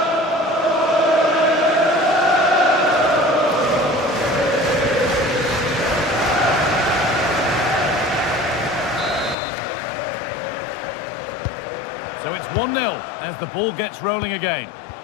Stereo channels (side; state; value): right; drops out; at 9.3 s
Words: So it's 1-0 as the ball gets rolling again.